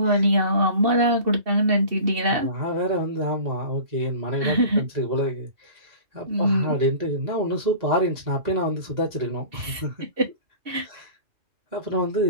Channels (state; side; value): late; left; 2.7 ms